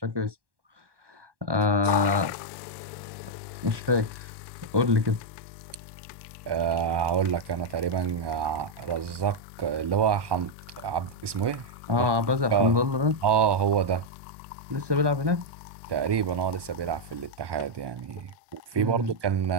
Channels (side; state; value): left; late; 1.2 ms